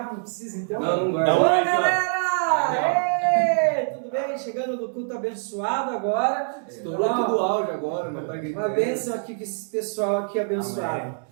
não precisa então? Não vai. Dá um Oi, oi aqui, ó. galera! Ê, tudo bem? Chegando no culto abençoado agora. Estourou tudo o áudio agora, mas tá gritando. Uma bênção aqui com esse pessoal aqui abençoado.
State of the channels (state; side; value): silent; left; digital silence